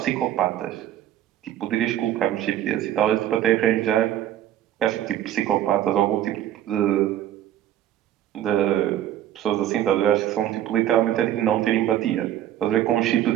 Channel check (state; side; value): quieter; left; 11.7 dB